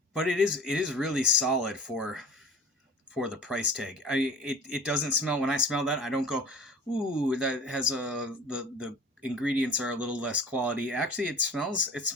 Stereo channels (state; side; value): normal; both; correlation 0.41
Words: but it is really solid for the price tag. It doesn't smell, when I smell that, I don't go, ooh, that has the ingredients are a little less quality. Actually, it